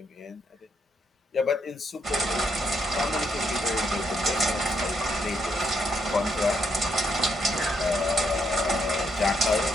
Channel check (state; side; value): normal; both; correlation 0.76